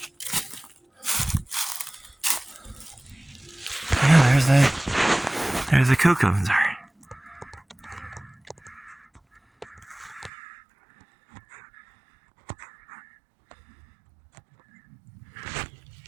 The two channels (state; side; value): drops out; left; at 10.3 s